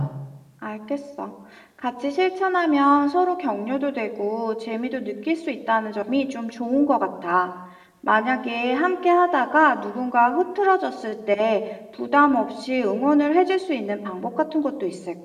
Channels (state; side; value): identical; both; correlation 1.00